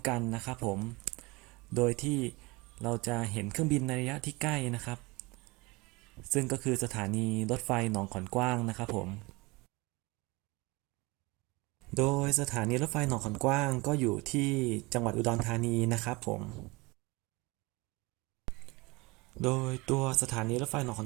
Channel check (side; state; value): left; quieter; 24.4 dB